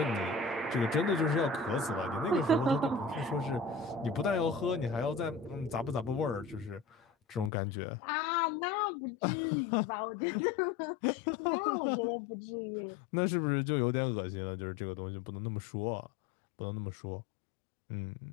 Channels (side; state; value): right; drops out; at 7.5 s